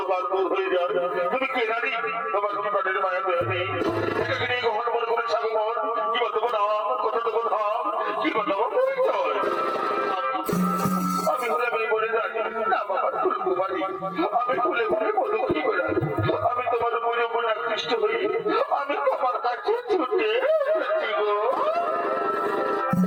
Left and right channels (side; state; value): both; identical; correlation 1.00